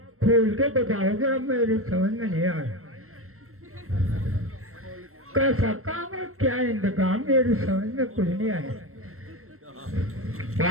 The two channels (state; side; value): late; left; 0.63 ms